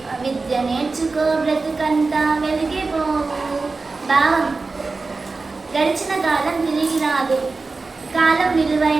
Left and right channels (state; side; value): quieter; left; 3.9 dB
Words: విద్య నేర్చుకో బ్రతుకంతా వెలిగిపోవు. భావం: గడిచిన కాలం తిరిగి రాదు. కాలం